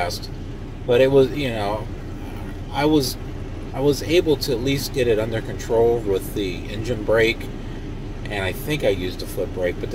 but it was, you know, I was able to at least get it under control with the engine brake, and I think I used a foot brake, but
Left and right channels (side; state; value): both; identical; correlation 1.00